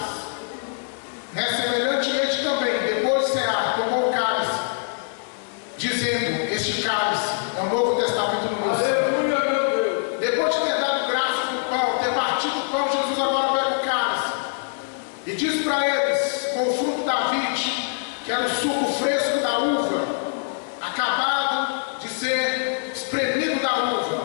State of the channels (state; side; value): silent; right; digital silence